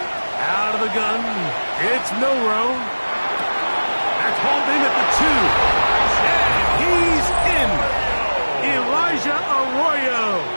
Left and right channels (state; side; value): inverted; both; correlation -1.00